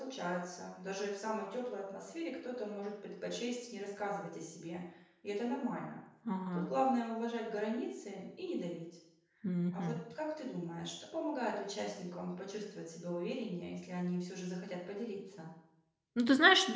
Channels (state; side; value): identical; both; correlation 1.00